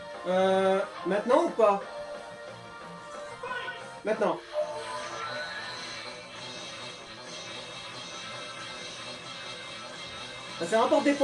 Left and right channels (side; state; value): both; identical; correlation 1.00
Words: Maintenant ou pas? Maintenant. Ça rapporte des